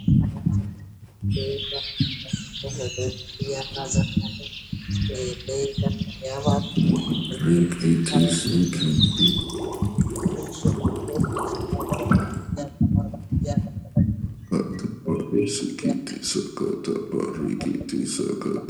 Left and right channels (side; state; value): both; identical; correlation 1.00